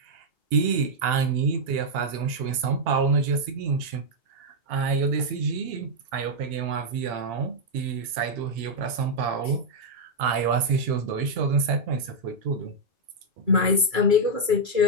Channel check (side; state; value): left; late; 2.3 ms